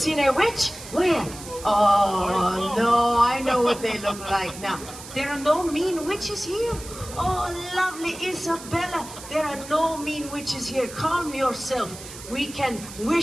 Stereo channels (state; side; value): noise; right; hiss, 14 dB below the sound